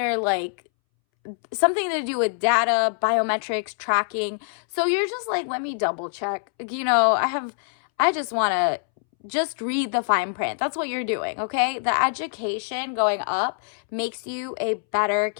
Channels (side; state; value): right; silent; 62 dB below the other